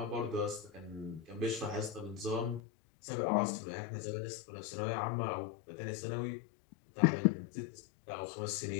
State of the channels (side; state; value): right; drops out; at 2.6 s